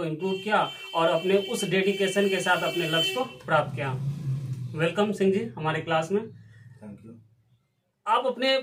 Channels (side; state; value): both; identical; correlation 1.00